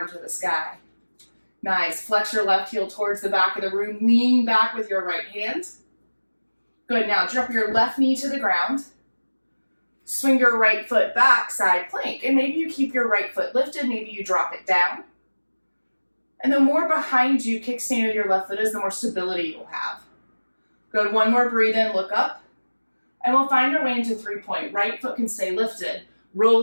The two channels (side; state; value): both; inverted; correlation -1.00